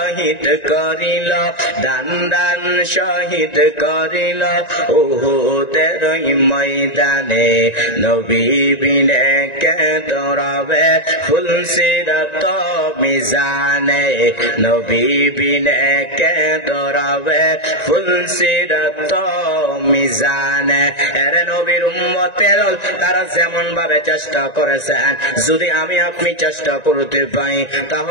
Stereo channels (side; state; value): right; late; 1.9 ms